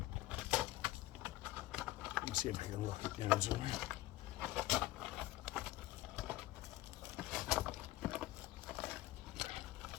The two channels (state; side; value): quieter; right; 16.5 dB